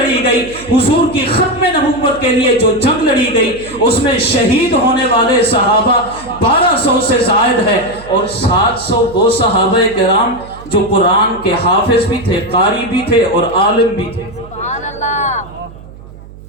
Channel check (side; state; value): right; noise; hum, 19 dB below the sound